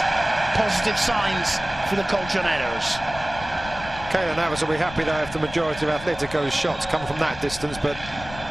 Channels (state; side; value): noise; left; rumble, 14 dB below the sound